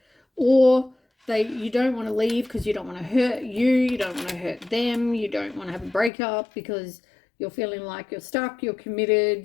or you don't want to leave because you don't want to hurt you don't want to hurt them, you don't want to have a breakup because you're feeling like you're stuck, you're committed,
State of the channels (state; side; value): drops out; right; at 6.1 s